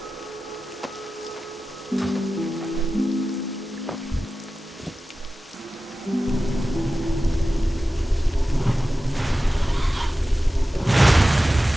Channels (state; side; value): normal; both; correlation 0.95